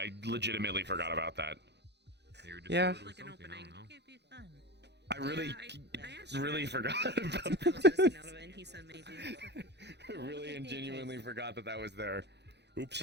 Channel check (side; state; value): left; late; 0.50 ms